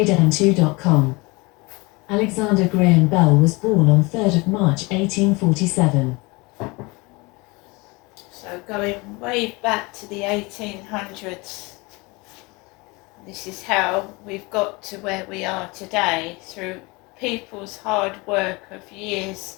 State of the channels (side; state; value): right; quieter; 25.6 dB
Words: Alexander Graham Bell was born on 3rd of March 1847. So going way back to the 1800s. This is how we've got to where we are today, through people's hard work of years